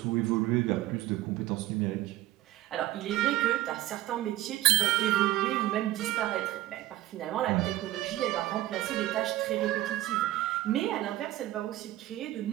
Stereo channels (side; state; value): left; quieter; 15.8 dB